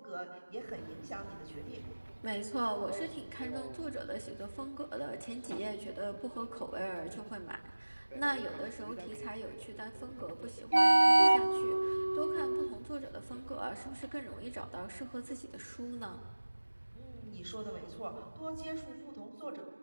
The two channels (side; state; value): both; inverted; correlation -1.00